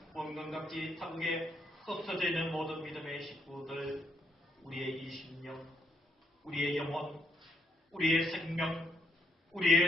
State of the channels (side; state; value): both; normal; correlation 0.74